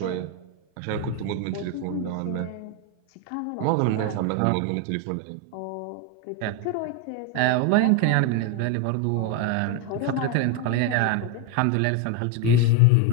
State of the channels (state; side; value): different; both; correlation 0.01